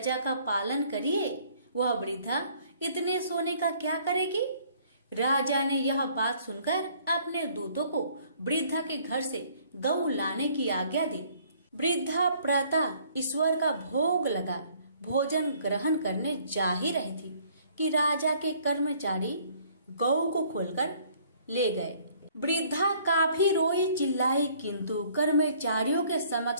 का पालन करिए। वह वृद्धा इतने सोने का क्या करेगी? राजा ने यह बात सुनकर अपने दूतों को वृद्धा के घर से गौ लाने की आज्ञा दी। वृद्धा प्रातः ईश्वर का भोग लगा भोजन ग्रहण करने जा ही रही थी कि राजा के कर्मचारी गौ को खोलकर ले गए। वृद्धा काफी रोई चिल्लाई, किंतु कर्मचारियों के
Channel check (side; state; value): both; inverted; correlation -0.60